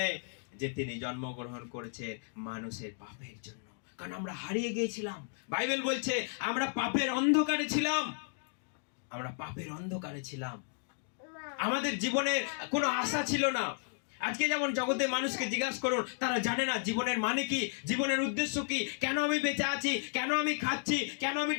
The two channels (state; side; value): silent; right; 55 dB below the other